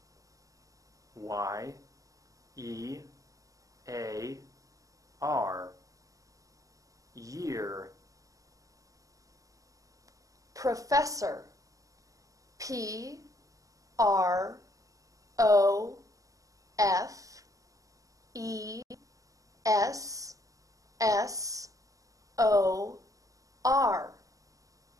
Y E A R. Year. Professor. P R O F E S S O R.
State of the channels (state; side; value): late; left; 0.16 ms